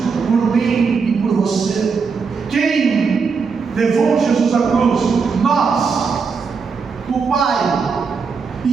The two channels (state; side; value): quieter; left; 5.3 dB